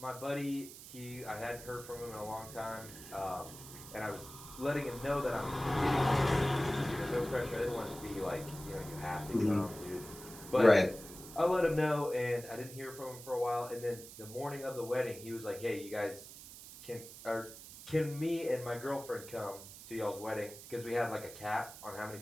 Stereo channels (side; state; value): right; noise; hiss, 14 dB below the sound